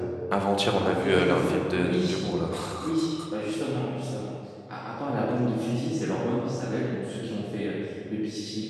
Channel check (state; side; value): identical; both; correlation 1.00